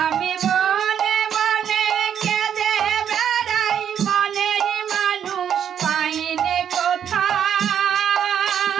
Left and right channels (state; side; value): quieter; left; 8.8 dB